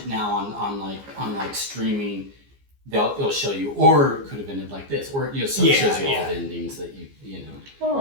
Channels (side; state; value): left; late; 15 ms